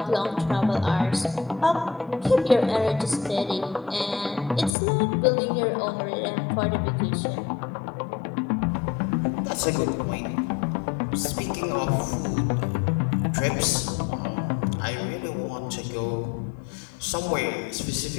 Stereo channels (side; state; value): right; drops out; at 4.8 s